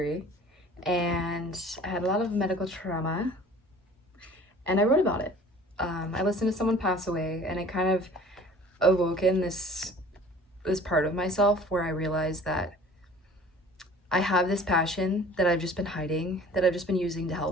and I had a lot of medical trauma, and I wrote about it. I listened to someone pass away, and it kind of awoken this part of myself where I realized that I have this passion that I've just been hiding, that I've just been using to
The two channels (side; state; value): both; normal; correlation 0.47